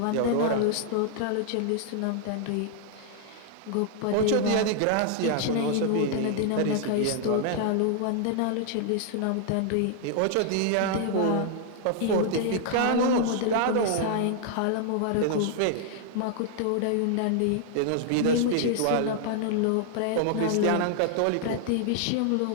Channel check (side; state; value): both; different; correlation 0.00